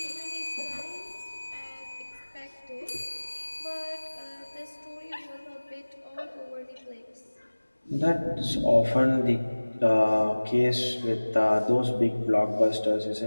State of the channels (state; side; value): inverted; both; correlation -1.00